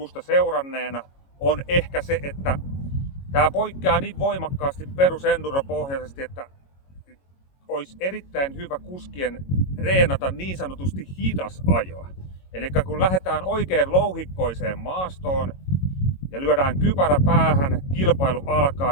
seuranneena, on ehkä se, että tämä poikkeaa niin voimakkaasti perusenduropohjaisesti, että olisi erittäin hyvä kuskien reenata niin sanotusti hidas ajoa. Eli kun lähdetään oikein louhikkoiseen maastoon ja lyödään kypärä päähän, kilpailu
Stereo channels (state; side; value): late; right; 22 ms